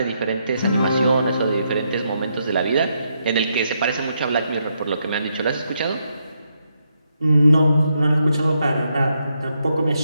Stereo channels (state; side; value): inverted; both; correlation -0.80